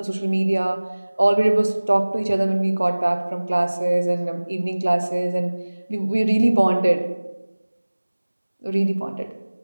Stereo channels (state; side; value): inverted; both; correlation -1.00